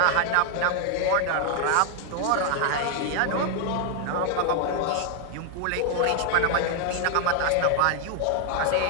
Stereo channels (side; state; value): both; different; correlation 0.00